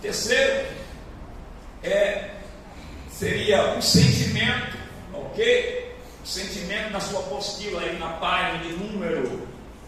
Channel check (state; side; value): identical; both; correlation 1.00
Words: seria o sentimento, ok? O sentimento na sua apostila aí na página de número